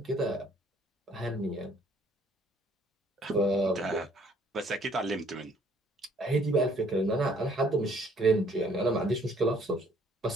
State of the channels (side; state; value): both; normal; correlation 0.61